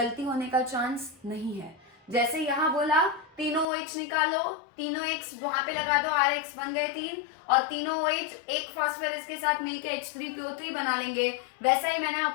होने का चांस नहीं है। जैसे यहाँ बोला तीनों OH निकालो, तीनों X वहां पे लगा दो, RX बन गए 3, और तीनों OH एक फास्फोरस के साथ मिलके H3PO3 बना लेंगे। वैसा ही मैंने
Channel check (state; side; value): drops out; right; at 3.7 s